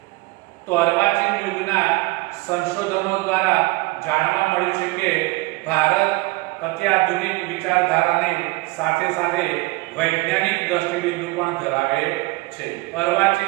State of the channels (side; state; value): left; quieter; 22.6 dB